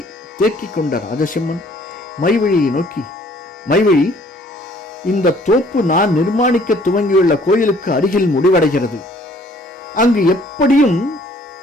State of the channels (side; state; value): both; normal; correlation 0.59